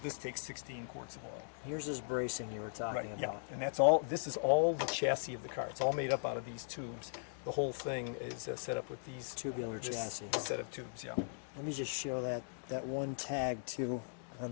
this takes 16 quarts of oil. Here's this bracing you were talking about. And that's all. This is all the chassis of the car. It's all made up out of these tubes. The whole thing is set up with these Tubular chassis. set of tubes. Yeah. Let me just show that one tag too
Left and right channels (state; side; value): silent; right; digital silence